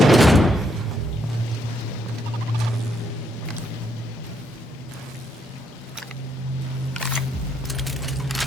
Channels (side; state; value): both; normal; correlation 0.75